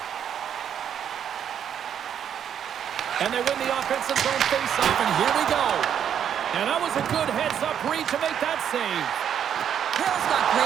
And they win the offensive zone face-off, and here we go. And that was a good heads-up read to make that save. Hill's got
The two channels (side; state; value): left; quieter; 8.9 dB